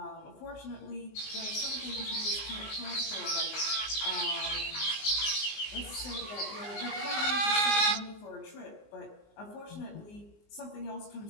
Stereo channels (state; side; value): late; right; 20 ms